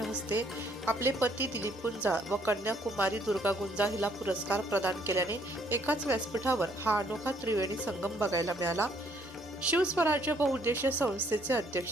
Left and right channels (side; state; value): both; normal; correlation 0.66